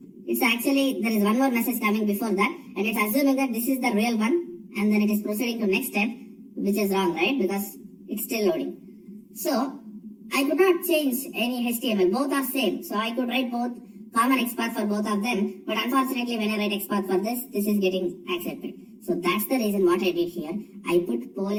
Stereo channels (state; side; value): identical; both; correlation 1.00